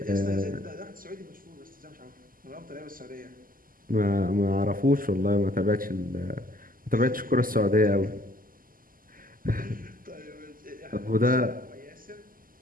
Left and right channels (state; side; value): late; left; 0.41 ms